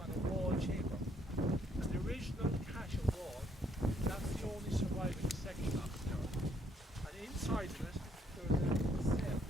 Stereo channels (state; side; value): normal; both; correlation 0.69